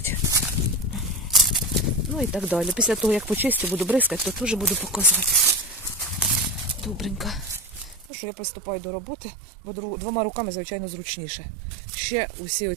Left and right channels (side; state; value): left; drops out; at 8.1 s